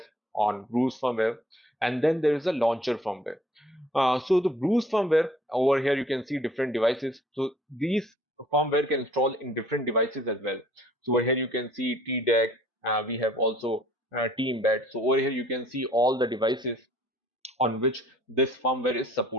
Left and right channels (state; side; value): normal; both; correlation 0.56